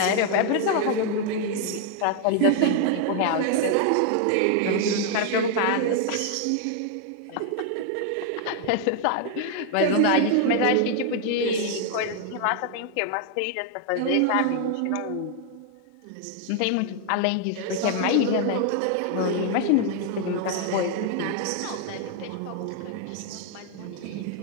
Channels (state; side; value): different; both; correlation 0.00